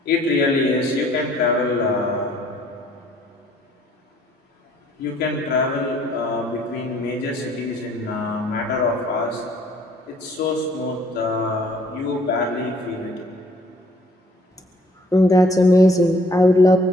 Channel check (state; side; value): normal; both; correlation 0.61